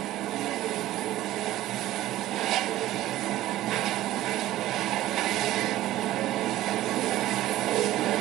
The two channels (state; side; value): quieter; left; 14.9 dB